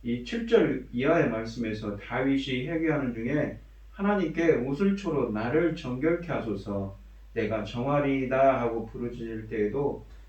이 7절 이하의 말씀에서 다윗이 회개하는 중에 하나님께 우슬초로 나를 정결케 하소서 내가 정하리이다 하고 부르짖을 때에도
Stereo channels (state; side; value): identical; both; correlation 1.00